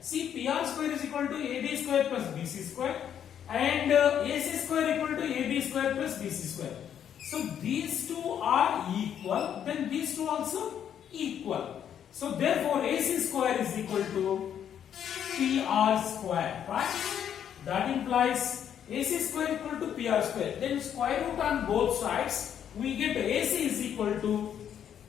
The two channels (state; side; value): quieter; right; 9.2 dB